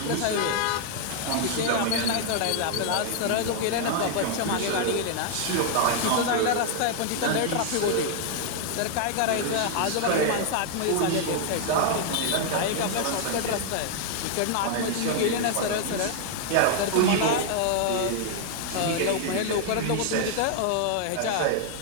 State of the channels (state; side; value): different; both; correlation 0.00